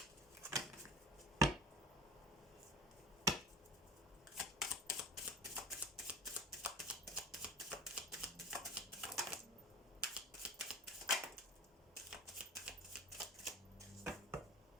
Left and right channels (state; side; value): normal; both; correlation 0.39